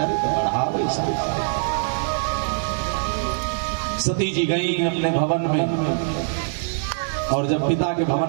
बढ़ावे सती जी गई अपने भवन में, और जब पिता के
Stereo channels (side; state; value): left; silent; digital silence